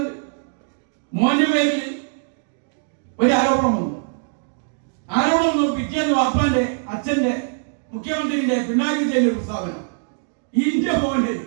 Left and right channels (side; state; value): left; silent; digital silence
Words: മോന്റെ പേരിൽ ഒരു ആരോപണം വന്നു. പിറ്റേന്ന് വാപ്പാന്റെ അച്ഛന്റെ മുഖ്യമന്ത്രിയുടെ പിണറായി വിജയന്റെ ഒരു പ്രസ്താവന,